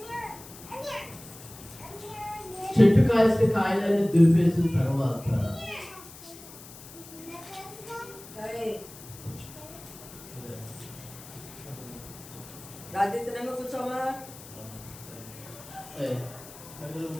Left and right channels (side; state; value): left; noise; hiss, 17 dB below the sound